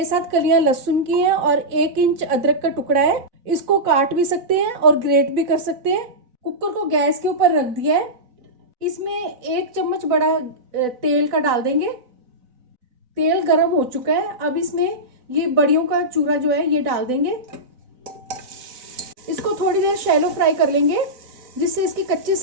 कलियां लहसुन की हैं और 1 इंच अदरक का टुकड़ा है, इसको काट भी सकते हैं और ग्रेट भी कर सकते हैं। कुकर को गैस के ऊपर रख दिया है। इसमें 1 चम्मच बड़ा तेल का डाल देंगे। तेल गरम हो चुका है, अब इसमें ये बड़ियों का चूरा जो है ये डाल देंगे। इसको थोड़ी देर शैलो फ्राई कर लेंगे जिससे इसकी कच्ची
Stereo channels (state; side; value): late; left; 4.0 ms